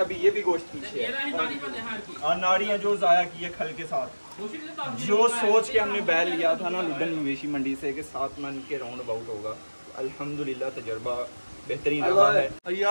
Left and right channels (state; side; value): inverted; both; correlation -1.00